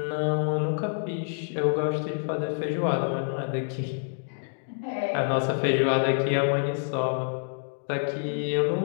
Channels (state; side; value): silent; right; digital silence